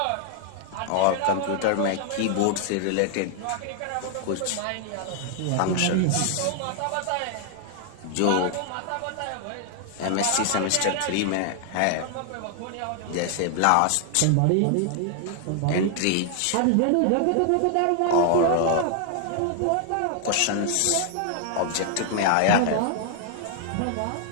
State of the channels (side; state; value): both; different; correlation 0.00